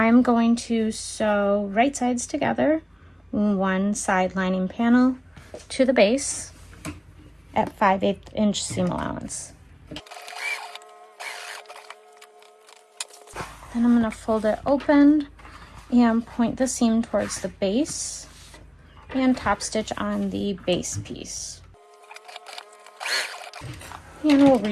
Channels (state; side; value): identical; both; correlation 1.00